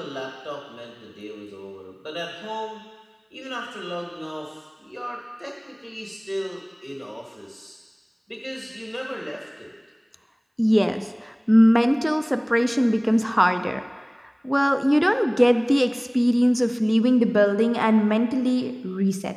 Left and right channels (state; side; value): identical; both; correlation 1.00